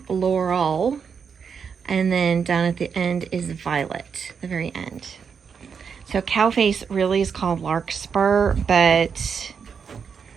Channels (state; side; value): quieter; left; 6.5 dB